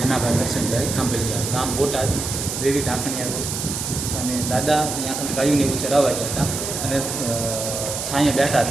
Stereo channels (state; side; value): noise; right; hiss, 4 dB below the sound